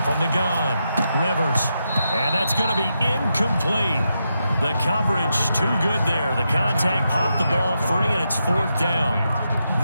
From the gun, Rivers. And that's going to be incomplete. The coverage too good there. The contact popped the ball free, and it's 4th down.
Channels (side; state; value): both; inverted; correlation -0.85